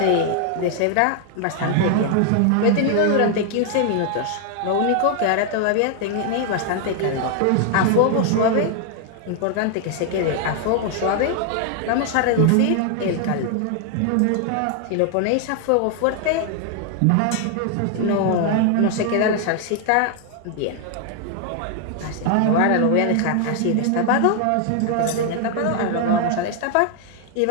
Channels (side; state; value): both; different; correlation 0.00